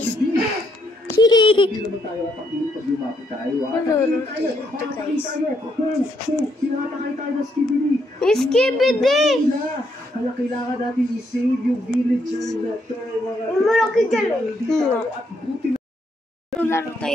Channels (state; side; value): normal; both; correlation 0.75